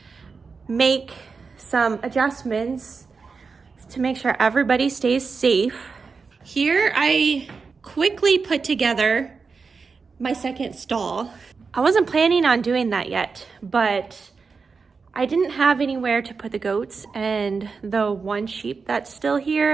make some adjustments to make sure everybody stays safe. Here I quickly put together my second stall. I wasn't planning on doing that yet, but I didn't have anywhere to put the goats and the one sheep that's still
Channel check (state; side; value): quieter; left; 4.9 dB